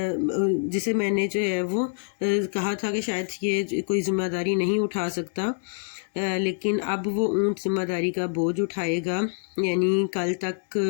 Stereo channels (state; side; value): silent; right; 61 dB below the other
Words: جسے میں نے جو ہے وہ کہا تھا کہ شاید یہ کوئی ذمہ داری نہیں اٹھا سکتا، لیکن اب وہ اونٹ ذمہ داری کا بوجھ اٹھائے گا۔ یعنی کل تک